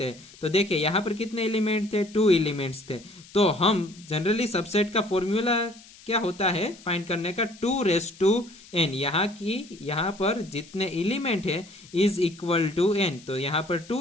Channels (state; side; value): noise; left; hiss, 22 dB below the sound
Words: हैं। तो देखिए यहां पर कितने एलिमेंट थे, 2 एलिमेंट्स थे। तो हम जनरली सबसेट का फॉर्मूला क्या होता है फाइंड करने का, 2n। यहां पर जितने एलिमेंट है इज इक्वल टू n। तो यहां पर